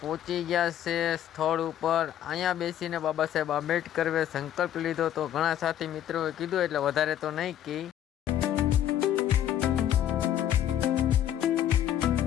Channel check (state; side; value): quieter; right; 11.0 dB